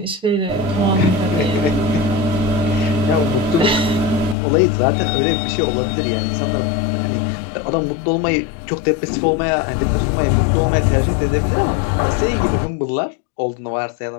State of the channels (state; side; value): drops out; right; at 4.4 s